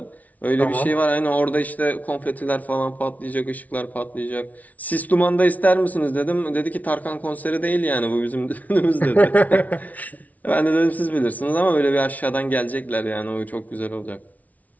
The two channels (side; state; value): right; late; 0.072 ms